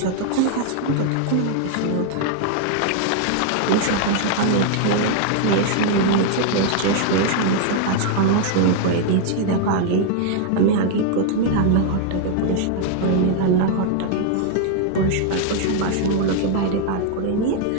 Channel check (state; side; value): different; both; correlation 0.00